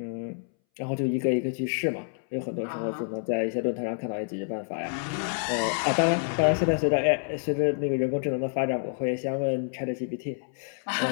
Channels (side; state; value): right; silent; 59 dB below the other